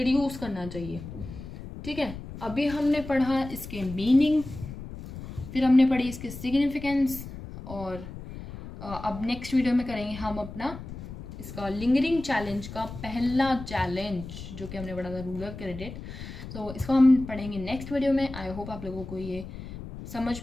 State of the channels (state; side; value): noise; left; rumble, 11 dB below the sound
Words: करना चाहिए। ठीक है, अभी हमने पढ़ा इसके मीनिंग, फिर हमने पढ़ी इसके सिग्निफिकेंस, और अब नेक्स्ट वीडियो में करेंगे हम अपना इसका लिंगरिंग चैलेंज का पहला चैलेंज जो कि हमने पढ़ा था, रूरल क्रेडिट। तो इसको हम पढ़ेंगे नेक्स्ट वीडियो में। आई होप आप लोगों को ये समझ